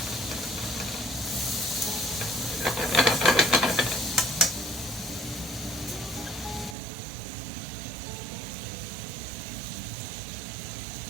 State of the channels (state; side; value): drops out; left; at 6.8 s